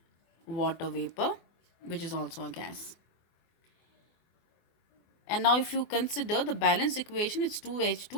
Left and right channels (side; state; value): right; late; 24 ms